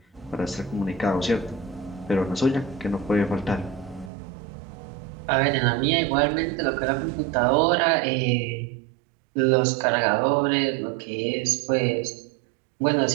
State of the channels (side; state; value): left; drops out; at 4.1 s